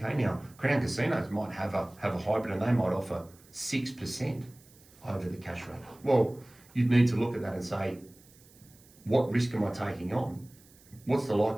now Crown casinos might have a hybrid and they might offer 6% over the cash rate. Well, you'd need to look at that and say, what risk am I taking on? What's the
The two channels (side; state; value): right; noise; hiss, 26 dB below the sound